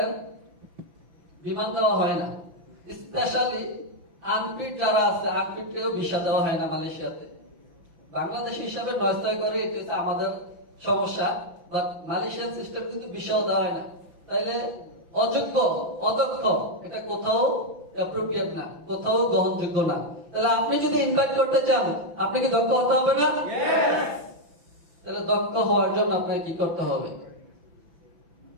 বিমান দেওয়া হয় না। স্পেশালি আনফিট যারা আছে, আনফিটকেও ভিসা দেওয়া হয় না মালয়েশিয়াতে। বাংলাদেশ হিসাবে নয়স্তয় করে, এটি হচ্ছে আমাদের সমস্যা। বাট মালয়েশিয়ান সিস্টেম কিন্তু ভিসাও দেওয়া হয় না। তাইলে অযোগ্য, অদক্ষ এটা কোথাও অ্যাপ্রোপ্রিয়েট না, কোথাও গ্রহণযোগ্য না। তাহলে আপনি যদি ইনভাইট করতে চান, আপনি কি দক্ষ হতে হবে না? তাহলে দক্ষ হওয়ার জন্য আপনাকে কি করতে হবে?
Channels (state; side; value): late; left; 5.9 ms